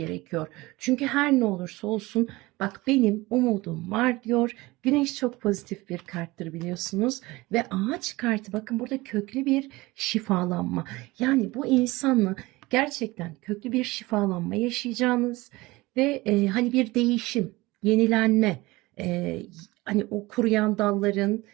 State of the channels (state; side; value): quieter; left; 20.9 dB